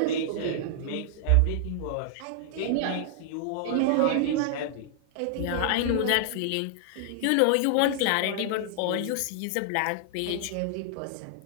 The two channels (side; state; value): both; different; correlation -0.01